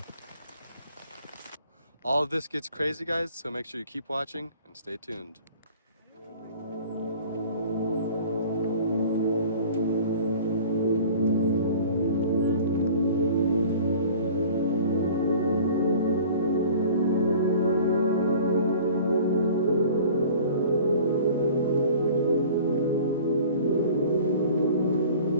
All of this gets crazy guys, so make sure you keep watching and stay tuned.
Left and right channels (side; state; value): both; inverted; correlation -0.47